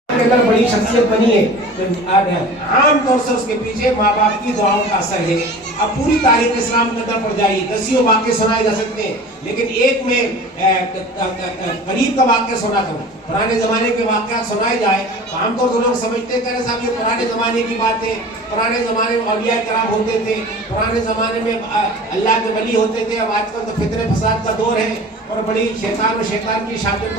اگر بڑی شخصیت بنی ہے تو عام طور سے اس کے پیچھے ماں باپ کی دعاؤں کا اثر ہے. اب پوری تاریخ اسلام کے اندر پڑ جائیے, دسیوں واقعے سنائے جا سکتے ہیں, لیکن ایک میں قریب کا واقعہ سناتا ہوں. پرانے زمانے کے واقعات سنائے جائے تو عام طور سے لوگ سمجھتے ہیں کہ صاحب یہ پرانے زمانے کی بات ہے, پرانے زمانے میں اولیاء کرام ہوتے تھے, پرانے زمانے میں اللہ کے ولی ہوتے تھے. اب آج کل تو فتنہ فساد کا دور ہے اور بڑی شیطان و شیطان کی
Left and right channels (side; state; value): both; normal; correlation 0.40